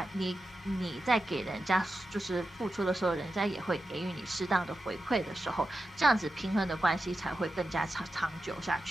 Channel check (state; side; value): normal; both; correlation 0.90